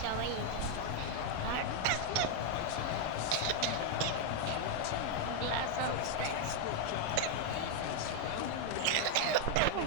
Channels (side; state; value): both; different; correlation 0.00